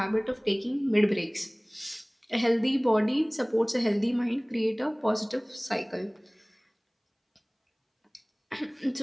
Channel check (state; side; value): identical; both; correlation 1.00